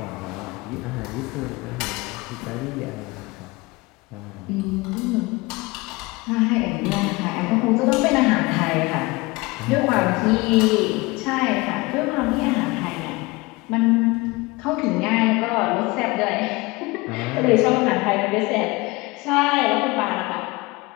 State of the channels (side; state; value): right; quieter; 23.5 dB